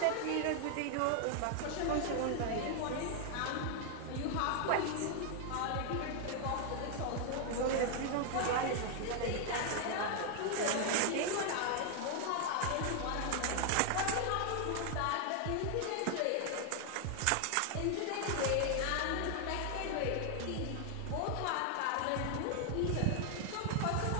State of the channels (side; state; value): both; different; correlation 0.00